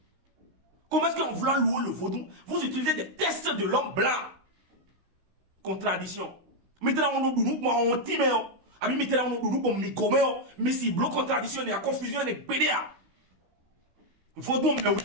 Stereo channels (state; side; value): late; left; 16 ms